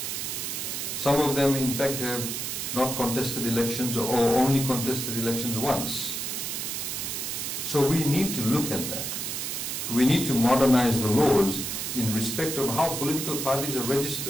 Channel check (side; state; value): right; noise; hiss, 3 dB below the sound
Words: Some of them, in fact, have not contested elections or only contested elections once. So we need to look at that. We need to modernize the laws in respect of how political parties are